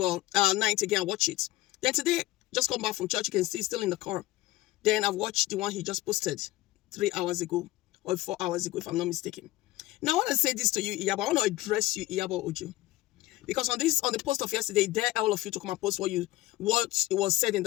Night again, I watched it. Then today, just come back from church, you can see still in the car. Then I've watched the one he just posted 3 hours ago or 4 hours ago, if I'm not mistaken. Now, I want to say this to you, Iyabo. I want to address you, Iyabo Ojo. Because on the post of yesterday, dare all of you to come and post what it was said in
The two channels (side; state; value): right; quieter; 17.8 dB